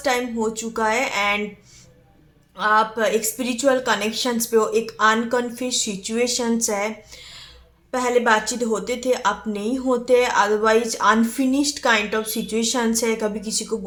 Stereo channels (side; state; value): both; identical; correlation 1.00